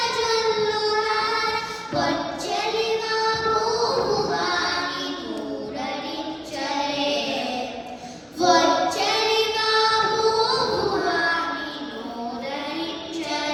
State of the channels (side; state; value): both; identical; correlation 1.00